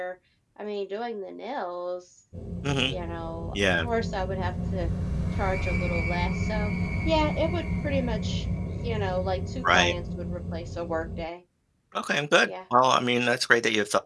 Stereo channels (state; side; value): identical; both; correlation 1.00